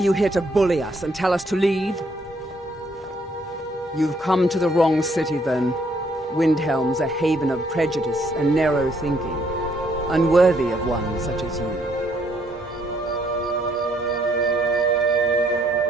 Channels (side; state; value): both; normal; correlation 0.69